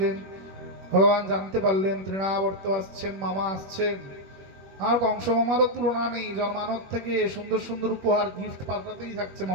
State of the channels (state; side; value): late; left; 21 ms